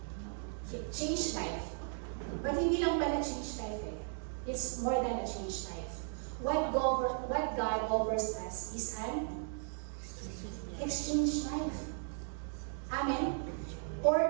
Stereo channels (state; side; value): silent; left; 54 dB below the other